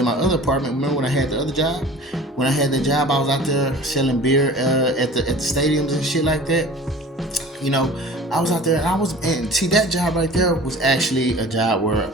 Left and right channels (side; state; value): both; normal; correlation 0.42